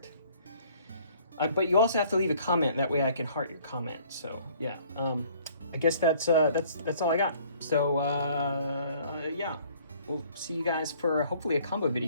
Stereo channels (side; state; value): both; inverted; correlation -0.57